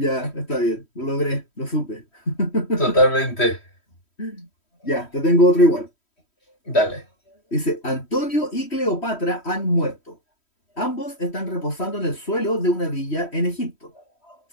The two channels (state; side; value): late; right; 3.1 ms